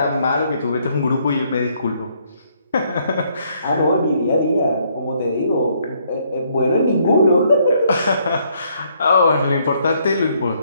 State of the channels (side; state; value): both; inverted; correlation -0.69